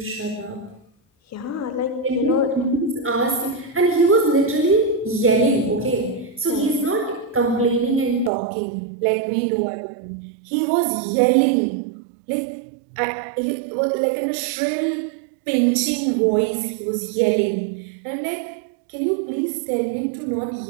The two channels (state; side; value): drops out; left; at 8.3 s